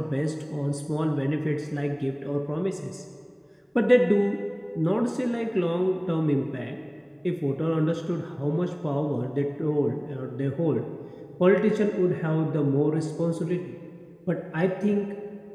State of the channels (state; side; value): identical; both; correlation 1.00